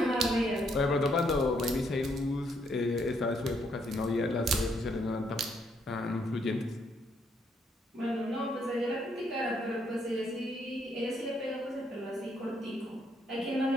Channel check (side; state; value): both; normal; correlation 0.73